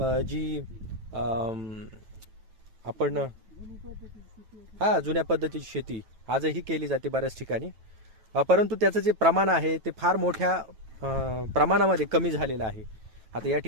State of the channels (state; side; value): late; left; 9.2 ms